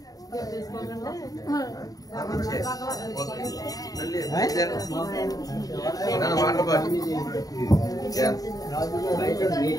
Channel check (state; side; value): late; right; 0.18 ms